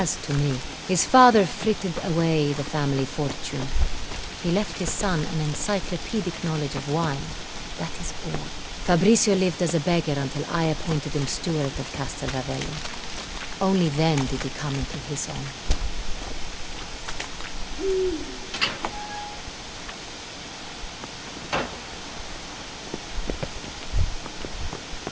to me. His father frittered away the family fortune. He left his son an encyclopedic knowledge of wine. That is all. Fabricio lived as a beggar until I appointed him steward of Castel Ravello. Only then did he come into his own.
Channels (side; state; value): both; identical; correlation 1.00